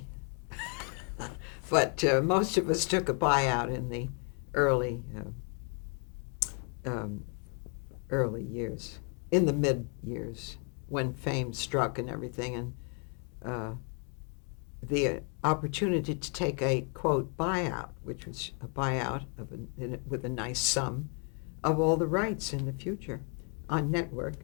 but most of us took a buyout in the early um, early years, in the mid years, when fame struck and everything, and uh, the opportunity to take a quote buyout, which was a buyout with a nice sum of all the rights in the future on network.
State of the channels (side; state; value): right; quieter; 38.3 dB